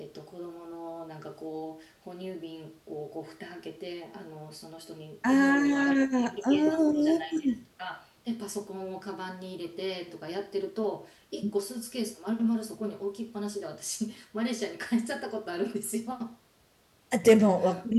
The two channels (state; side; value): identical; both; correlation 1.00